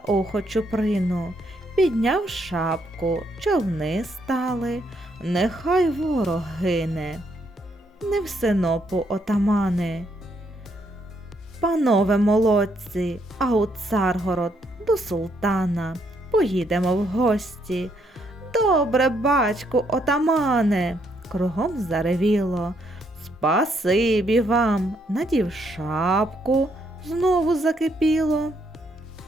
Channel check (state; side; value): normal; both; correlation 0.73